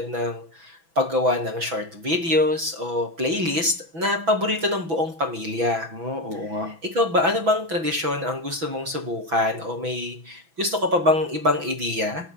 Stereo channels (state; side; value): late; left; 6.1 ms